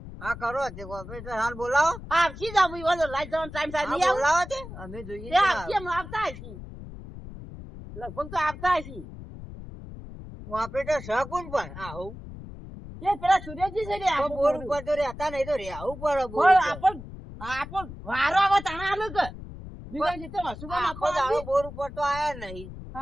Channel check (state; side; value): noise; left; rumble, 13 dB below the sound